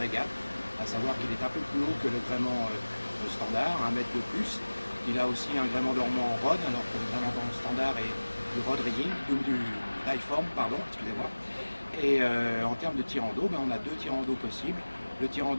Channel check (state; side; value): inverted; both; correlation -1.00